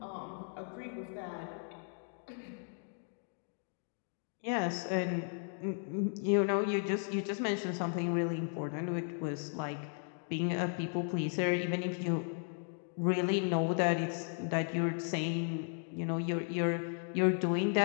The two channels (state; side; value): silent; right; 54 dB below the other